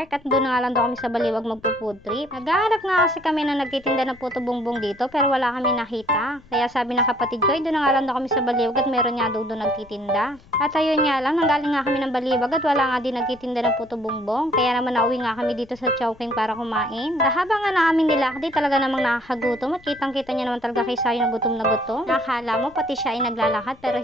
at doon na nga lang daw kami sa Baliwag magpo-food trip. Naghahanap nga kasi kami na nagtitinda ng puto bongbong dito pero wala kami nakita. Kaya sabi ng kapatid ko ay doon na nga lang daw kami sa Baliwag at meron nga daw doon nagtitinda. At ayun nga lang, nanggaling nga kami ng Baliwag at wala nga din nagtitinda ng puto bongbong. Kaya naman nauwi nga kami dito sa Chowking para kumain. Habang nga namin nilakdi talaga namang nakakagutom at kitang-kita niya naman talaga kay Sayo na gutom na gutom. Nakakala mo pati siya ay naglalakad pero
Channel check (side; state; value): left; noise; rumble, 26 dB below the sound